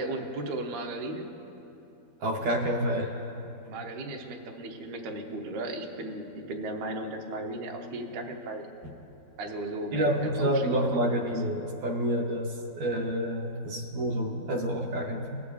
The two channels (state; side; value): late; left; 12 ms